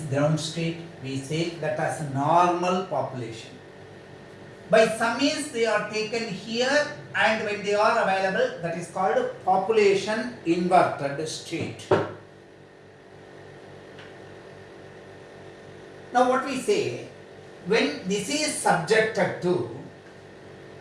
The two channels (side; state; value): both; identical; correlation 1.00